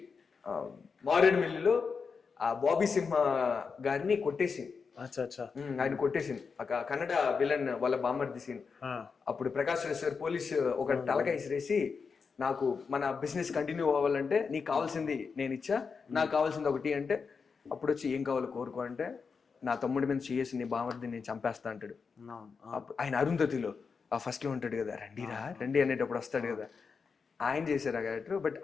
మారేడుమిల్లిలో ఆ బాబీ సింహ గారిని కొట్టేసింది. ఆయన కొట్టేసింది కన్నడ విలన్ వాళ్ళ బామర్ది సీన్. అప్పుడు ప్రకాష్ రాజ్ సార్ పోలీస్ ఒక తలకాయ ఇసిరేసి, నాకు మన బిజినెస్ కంటిన్యూ అవ్వాలంటే నీకు కావాల్సింది నేను ఇచ్చా, నాకు కావాల్సింది ఒకటి అంటే, అప్పుడు వచ్చి ఏం కావాలో కోరుకో అంటే, నా తమ్ముడి మీద చేసి నీ బామర్ది నేను చంపేస్తా అంటాడు. ఆయన అరుంధతిలో ఫస్ట్ లో ఉంటాడు కదా, రండిరా రండి అనేటప్పుడు వస్తాడు కదా, ఆయన చేశారు ఆ క్యారెక్టర్. బట్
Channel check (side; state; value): right; quieter; 5.4 dB